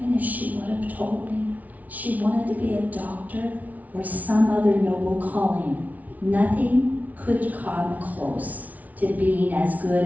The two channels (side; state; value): left; late; 0.073 ms